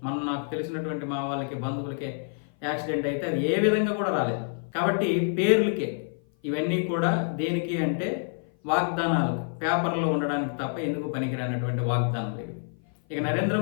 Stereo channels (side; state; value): right; silent; 55 dB below the other